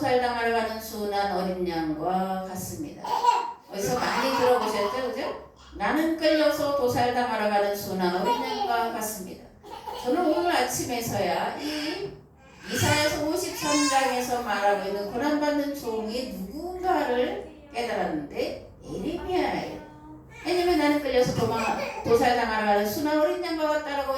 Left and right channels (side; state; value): both; identical; correlation 1.00